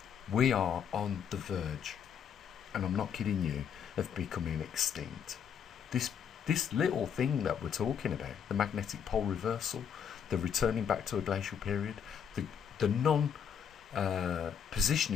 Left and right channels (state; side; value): quieter; right; 7.7 dB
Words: We are on the verge, and I'm not kidding you, of becoming extinct. This little thing that we're talking about, the magnetic pole reversal, the returning back to a glacial period, the